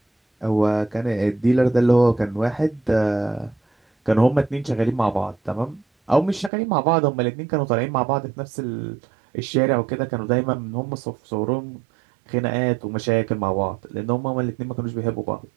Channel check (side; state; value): left; drops out; at 6.5 s